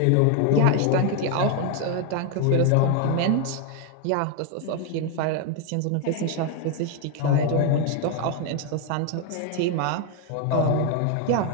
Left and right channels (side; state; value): both; different; correlation 0.01